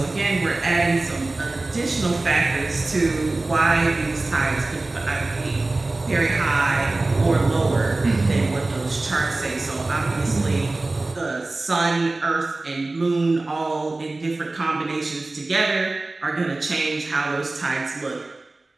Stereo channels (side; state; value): left; quieter; 3.1 dB